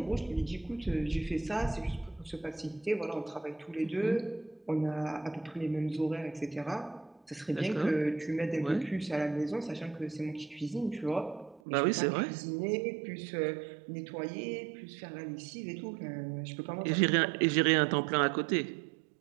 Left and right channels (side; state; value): left; drops out; at 11.6 s